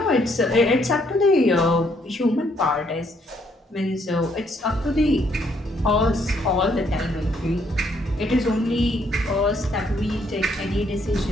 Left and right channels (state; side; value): normal; both; correlation 0.70